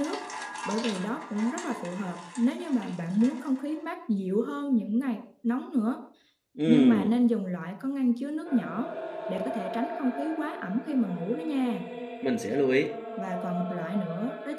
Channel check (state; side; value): identical; both; correlation 1.00